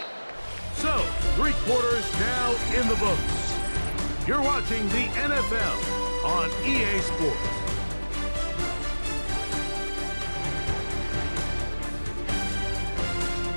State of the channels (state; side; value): inverted; both; correlation -1.00